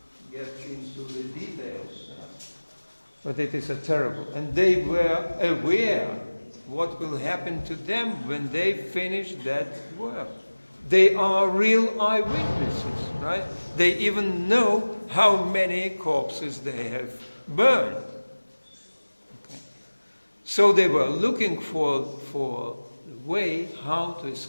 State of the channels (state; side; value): inverted; both; correlation -1.00